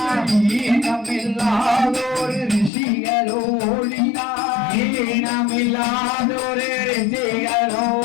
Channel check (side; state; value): right; drops out; at 2.7 s